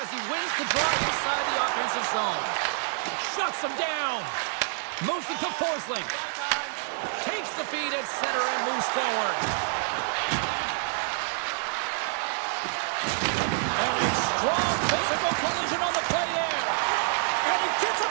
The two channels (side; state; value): left; silent; 60 dB below the other